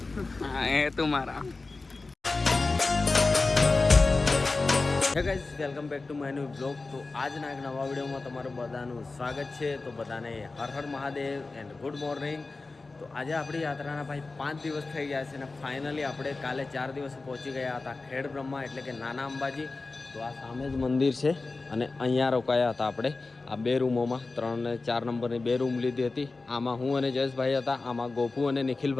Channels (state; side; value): quieter; right; 3.7 dB